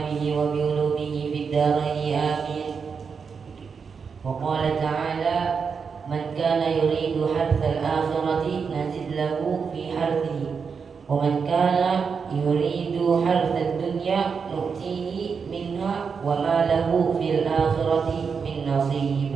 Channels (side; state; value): left; quieter; 5.8 dB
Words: به وبعلومه في الدارين آمين. وقال تعالى: من كان يريد حرث الآخرة نزد له في حرثه ومن كان يريد حرث الدنيا نؤتيه منها وما له في الآخرة من نصيب.